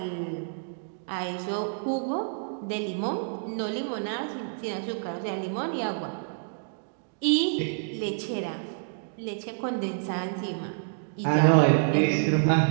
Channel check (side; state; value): left; silent; digital silence